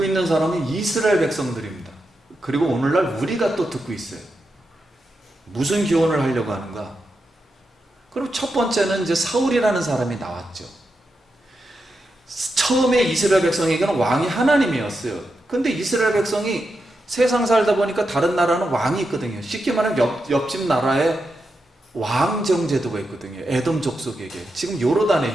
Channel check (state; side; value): normal; both; correlation 0.87